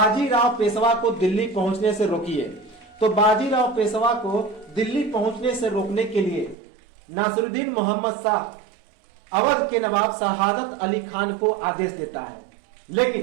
पेशवा को दिल्ली पहुंचने से रोकिए। तो बाजीराव पेशवा को दिल्ली पहुंचने से रोकने के लिए नासिरुद्दीन मोहम्मद शाह अवध के नवाब शहादत अली खान को आदेश देता है,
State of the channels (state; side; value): drops out; left; at 6.6 s